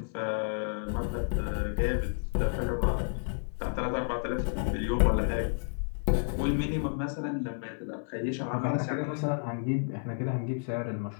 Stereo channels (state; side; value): silent; right; 57 dB below the other